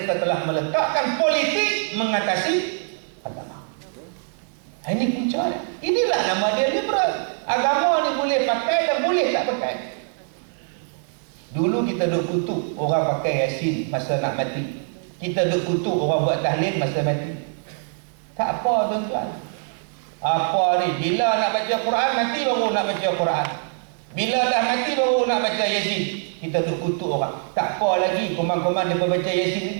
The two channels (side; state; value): left; silent; 59 dB below the other